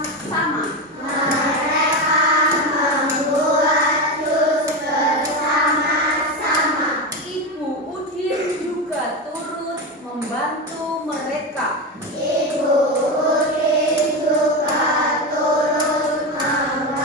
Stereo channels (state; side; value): normal; both; correlation 0.16